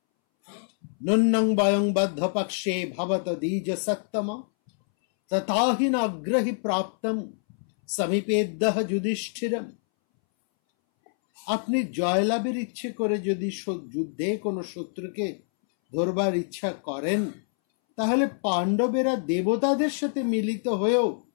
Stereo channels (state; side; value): silent; right; 61 dB below the other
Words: নন্নং বয়ং বদ্ধ পক্ষে ভবত দ্বিজ সত্তম তথাহি নাগ্রহি প্রাপ্তম সমীপেদ্যঃ যুধিষ্ঠিরম। আপনি জয়লাভের ইচ্ছে করে যদি যুদ্ধে কোনো শত্রুকে ধরবার ইচ্ছা করেন, তাহলে পাণ্ডবেরা দেবতাদের সাথে মিলিত হয়েও